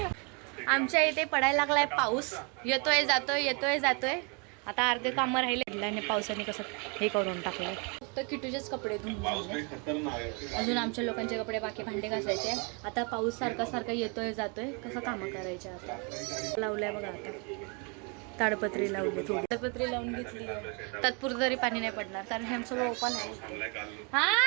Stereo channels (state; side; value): quieter; left; 33.9 dB